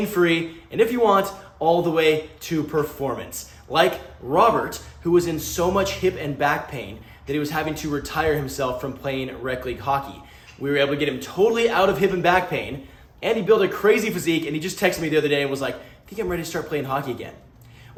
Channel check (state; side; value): identical; both; correlation 1.00